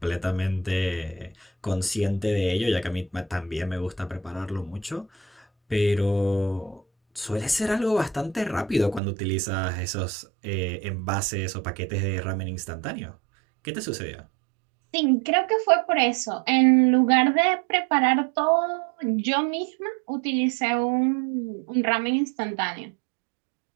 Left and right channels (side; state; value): left; drops out; at 9.0 s